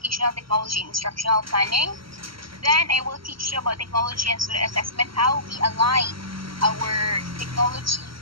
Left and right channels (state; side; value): late; left; 0.74 ms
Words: technology, instructional planning. Then I will teach you about technology and student assessment, how we align our technology